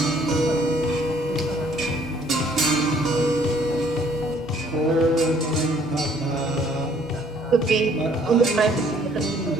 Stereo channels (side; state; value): both; normal; correlation 0.61